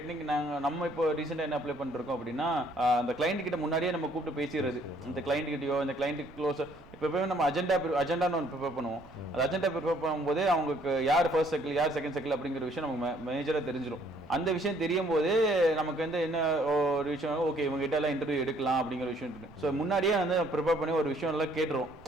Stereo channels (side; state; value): right; noise; rumble, 23 dB below the sound